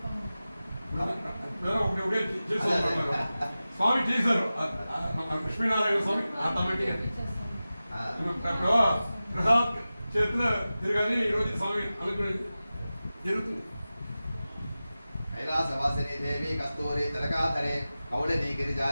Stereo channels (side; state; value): both; inverted; correlation -0.95